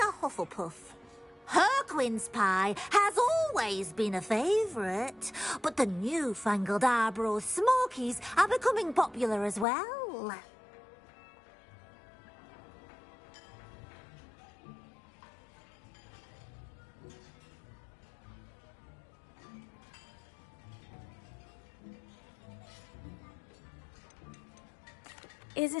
Hufflepuff. Her quince pie has always been a favourite, but the newfangled Arbroath Smokies are becoming popular as well. Is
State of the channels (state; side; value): drops out; right; at 9.7 s